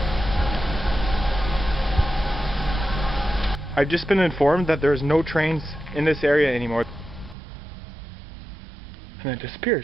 I've just been informed that there's no trains in this area anymore. And then it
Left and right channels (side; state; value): left; drops out; at 7.4 s